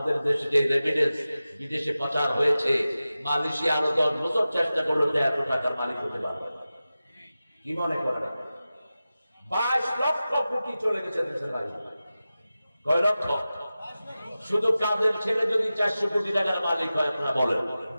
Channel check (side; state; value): both; inverted; correlation -0.95